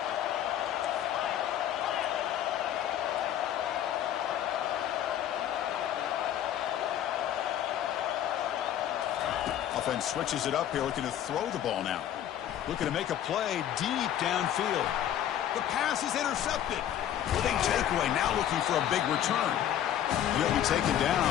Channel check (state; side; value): quieter; right; 10.9 dB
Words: Offense switches it up here, looking to throw the ball now. Looking to make a play deep downfield. The pass is intercepted. Big takeaway, now looking for a big return. And he'll be taken down,